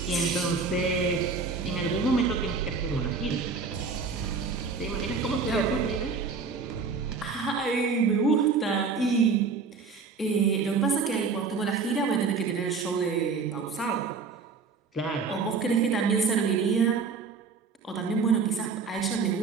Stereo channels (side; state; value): left; quieter; 4.9 dB